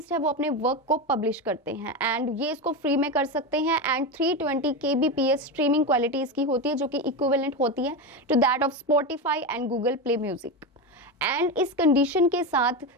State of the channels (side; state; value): both; normal; correlation 0.17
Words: है वो अपने वर्क को पब्लिश करते हैं एंड ये इसको फ्री में कर सकते हैं। एंड 320 kbps स्ट्रीमिंग क्वालिटी इसकी होती है, जो कि इक्विवेलेंट होती है to that of Spotify and Google Play Music. And इस कंडीशन के साथ